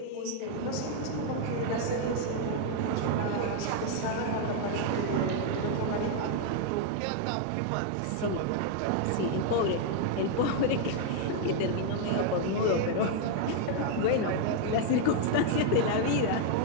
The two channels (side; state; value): both; different; correlation 0.00